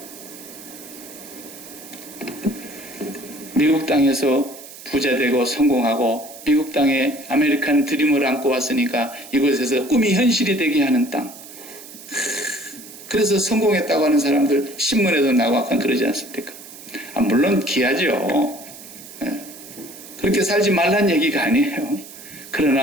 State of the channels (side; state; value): right; noise; hiss, 16 dB below the sound